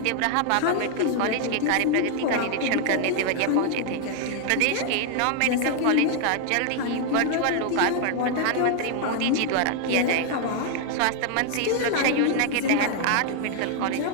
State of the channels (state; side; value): different; both; correlation 0.00